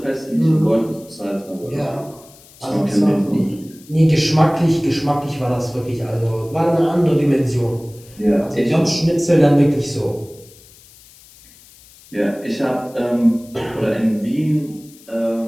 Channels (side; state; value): left; noise; hiss, 24 dB below the sound